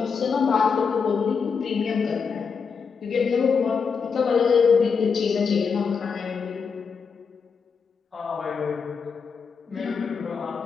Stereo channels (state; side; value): quieter; right; 5.7 dB